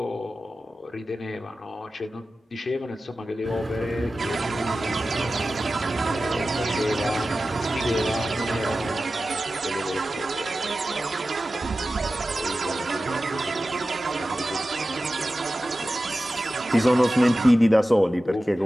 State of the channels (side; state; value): both; normal; correlation 0.94